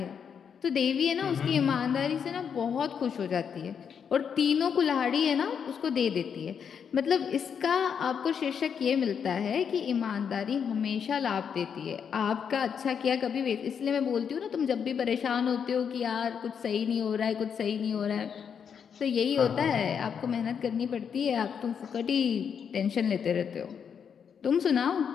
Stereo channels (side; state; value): right; quieter; 7.3 dB